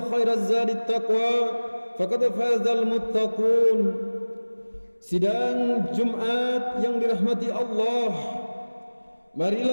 خير الزاد التقوى فقد فاز المتقون. Sidang Jumat yang dirahmati Allah,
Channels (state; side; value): inverted; both; correlation -1.00